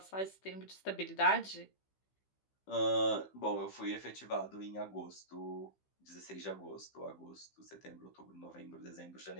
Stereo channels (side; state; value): right; late; 15 ms